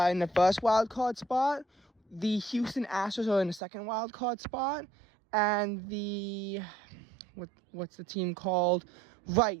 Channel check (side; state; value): left; drops out; at 3.6 s